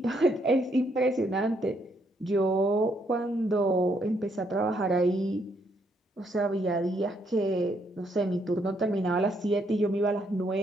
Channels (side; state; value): both; normal; correlation 0.73